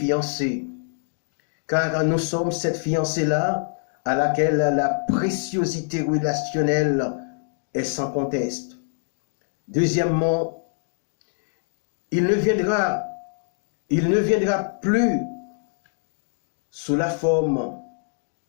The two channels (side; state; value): right; silent; digital silence